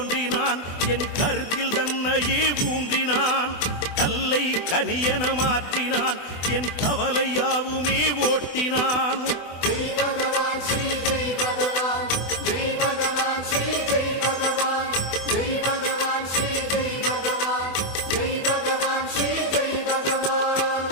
என் கருத்தில் தன்னையே ஊன்றினான். கல்லை கனியன மாற்றினான் என் கவலையாவுமே ஓட்டினான். ஜெய் பகவான் ஸ்ரீ ஜெய் பகவான் ஜெய் பகவான் ஸ்ரீ ஜெய் பகவான் ஜெய் பகவான் ஸ்ரீ ஜெய் பகவான் ஜெய் பகவான் ஸ்ரீ ஜெய் பகவான்.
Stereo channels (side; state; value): right; late; 24 ms